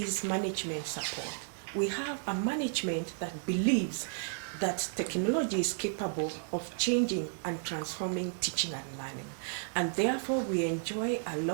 management support. We have a management that believes that technology is capable of changing and transforming teaching and learning. And therefore, we enjoy a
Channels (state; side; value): silent; left; digital silence